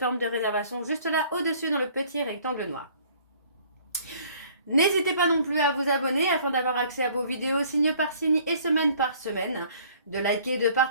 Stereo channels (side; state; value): both; inverted; correlation -0.55